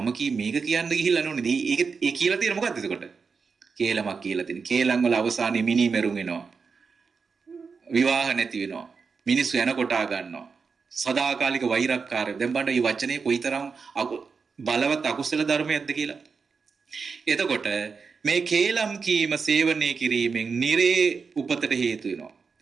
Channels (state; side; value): quieter; left; 5.2 dB